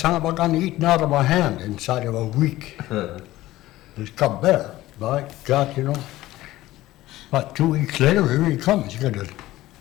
of a gun eaten out of my hand inside of a week. this cub bear. By God, you know. About 2 weeks later, here he comes. He got a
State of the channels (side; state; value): right; quieter; 16.4 dB